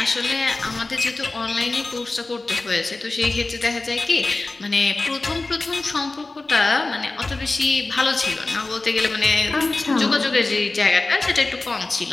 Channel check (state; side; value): quieter; right; 3.3 dB